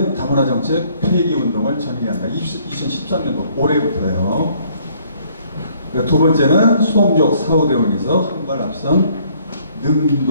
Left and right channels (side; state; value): both; inverted; correlation -0.63